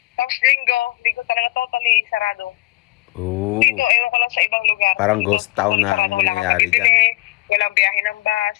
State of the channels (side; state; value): right; quieter; 20.7 dB